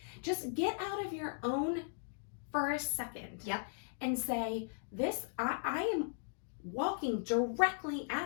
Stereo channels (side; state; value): right; silent; digital silence